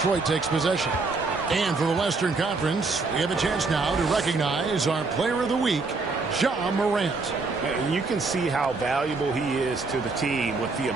takes possession. And for the Western Conference, we have a chance now to recognize our Player of the Week, Ja Morant. And you can see how valuable he is to the team with the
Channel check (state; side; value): quieter; left; 3.9 dB